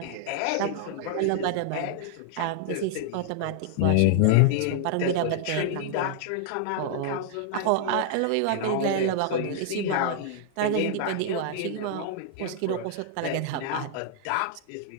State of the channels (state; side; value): different; both; correlation -0.01